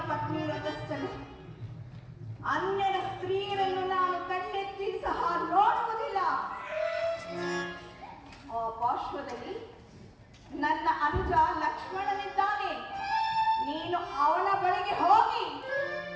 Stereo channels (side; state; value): both; identical; correlation 1.00